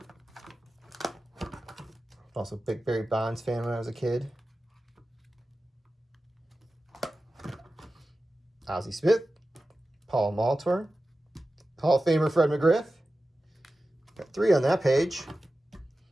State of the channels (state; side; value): normal; both; correlation 0.94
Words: Also a big Barry Bonds fan when I was a kid. Ozzie Smith, Paul Maltor, Hall of Famer Fred McGriff. Got 3 on that page.